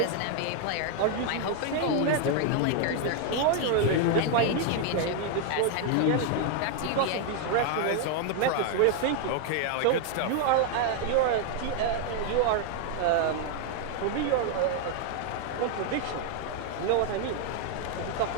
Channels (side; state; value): both; different; correlation 0.00